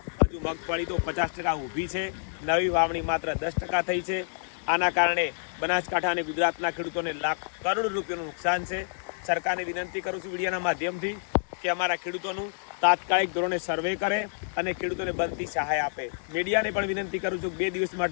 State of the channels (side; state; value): right; silent; digital silence